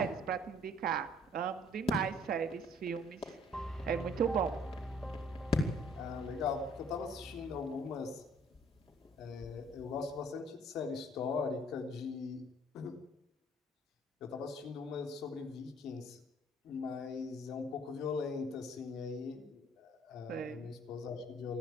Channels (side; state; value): both; normal; correlation 0.58